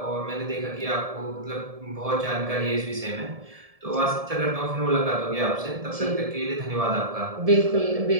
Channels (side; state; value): left; late; 1.7 ms